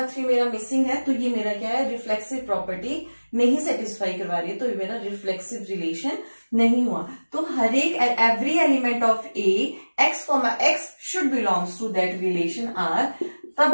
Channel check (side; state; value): both; inverted; correlation -1.00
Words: 3 मेरा मिसिंग है. तो ये मेरा क्या है, रिफ्लेक्सिव प्रॉपर्टी नहीं सेटिस्फाई करवा रही है, तो ये मेरा रिफ्लेक्सिव रिलेशन नहीं हुआ. तो हर एक every element of A, x, x should belongs to that relation R. तब